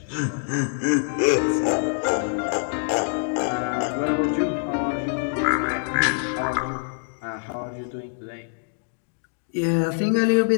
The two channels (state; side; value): silent; right; digital silence